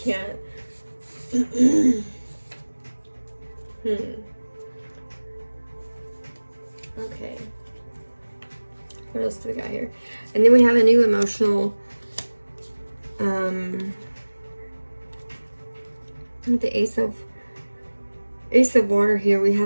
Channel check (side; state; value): both; inverted; correlation -1.00